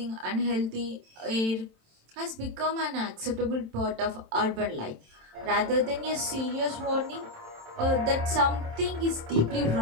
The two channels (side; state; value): left; late; 27 ms